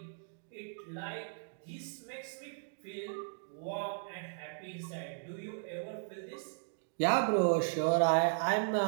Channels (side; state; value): left; silent; digital silence